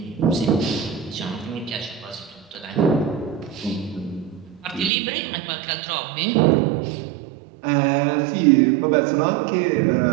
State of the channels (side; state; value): left; drops out; at 4.9 s